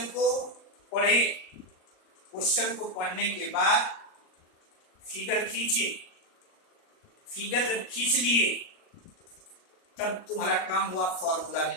को पढ़े, क्वेश्चन को पढ़ने के बाद फिगर खींचे, फिगर जब खींच लिए तब तुम्हारा काम हुआ फॉर्मूला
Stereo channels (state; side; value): late; right; 38 ms